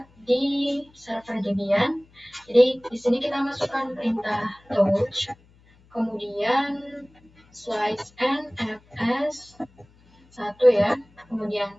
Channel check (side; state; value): left; noise; hum, 29 dB below the sound